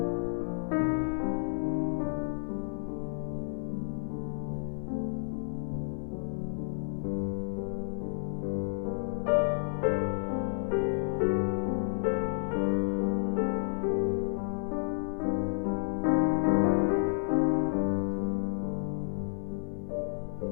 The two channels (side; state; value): right; silent; digital silence